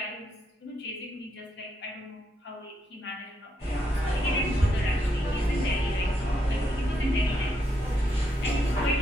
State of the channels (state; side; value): normal; both; correlation 0.78